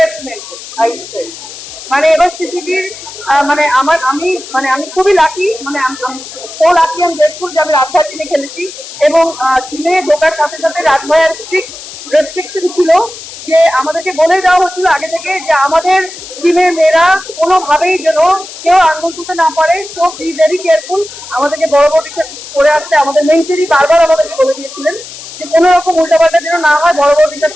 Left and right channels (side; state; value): left; noise; hiss, 14 dB below the sound